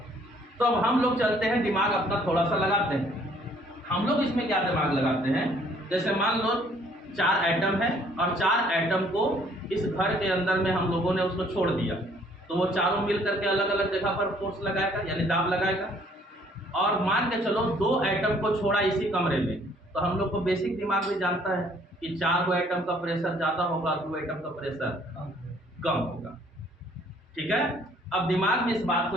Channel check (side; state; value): both; normal; correlation 0.61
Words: तो अब हम लोग चलते हैं, दिमाग अपना थोड़ा सा लगाते हैं। हम लोग इसमें क्या दिमाग लगाते हैं, जैसे मान लो 4 एटम है और 4 एटम को इस घर के अंदर में हम लोगों ने उसको छोड़ दिया, तो वो चारों मिल करके अलग अलग जगह पर फोर्स लगाएगा यानी दाब लगाएगा। और मान के चलो 2 एटम को छोड़ा इसी कमरे में, तो हम लोग को बेसिक दिमाग भी जानता है कि 4 एटम का प्रेशर ज़्यादा होगा, 2 एटम का प्रेशर कम होगा। ठीक है, अब दिमाग में इस बात को